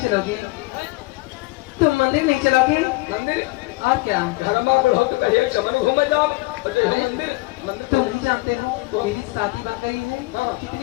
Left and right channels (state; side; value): quieter; right; 23.2 dB